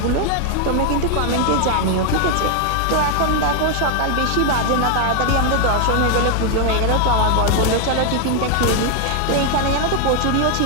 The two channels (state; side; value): different; both; correlation 0.00